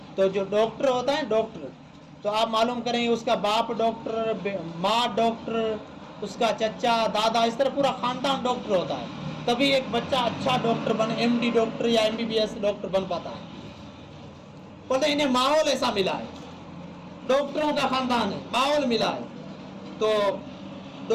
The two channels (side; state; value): both; identical; correlation 1.00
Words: تو جو ڈاکٹر ہوتا ہے ڈاکٹر، تو آپ معلوم کریں اس کا باپ ڈاکٹر، ماں ڈاکٹر، اس کا چچا، دادا، اس طرح پورا خاندان ڈاکٹر ہوتا ہے، تبھی ایک بچہ اچھا ڈاکٹر بن، ایم ڈی ڈاکٹر یا M B B S doctor بن پاتا ہے۔ بولتے ہیں انہیں ماحول ایسا ملا ہے، ڈاکٹروں کا خاندان ہے، ماحول ملا ہے، تو